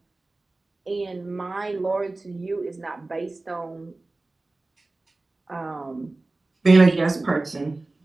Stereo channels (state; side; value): quieter; left; 3.1 dB